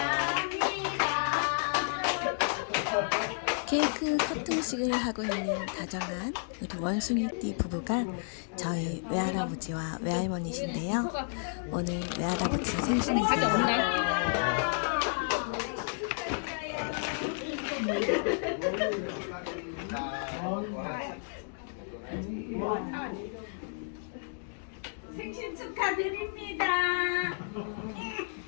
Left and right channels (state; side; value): silent; right; digital silence